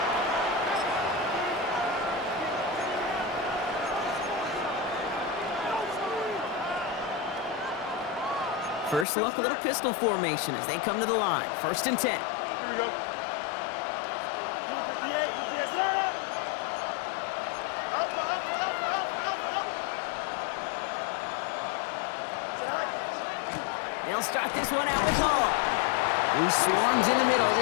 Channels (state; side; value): drops out; right; at 9.1 s